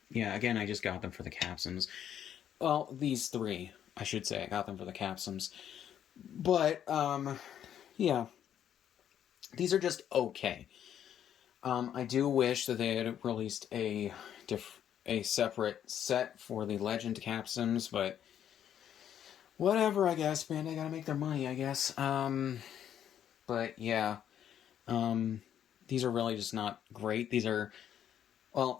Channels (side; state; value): right; quieter; 9.8 dB